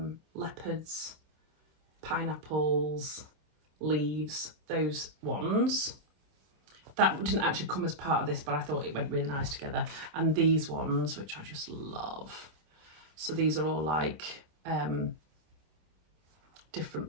leopards, pineapples, leaves, those ones. That didn't actually come as part of this, but I thought it went really nice together. And these ones, which I just love. So these are all like different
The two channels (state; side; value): late; left; 26 ms